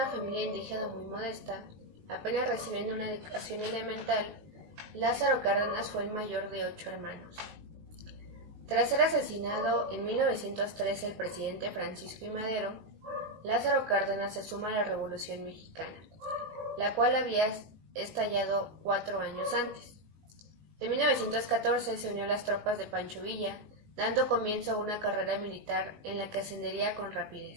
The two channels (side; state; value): left; late; 19 ms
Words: familia indígena muy modesta, apenas recibiendo una educación elemental, Lázaro Cárdenas fue el mayor de 8 hermanos. Tras ser asesinado en 1913 el presidente Francisco I. Madero, Lázaro Cárdenas se suma a la Revolución Mexicana, la cual había estallado 4 años antes. En 1914 se unió a las tropas de Pancho Villa, dando comienzo a una carrera militar en la que ascendería con